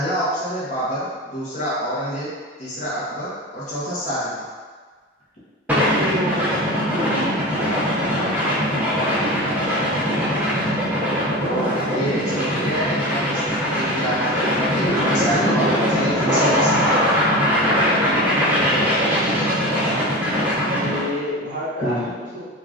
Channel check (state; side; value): normal; both; correlation 0.28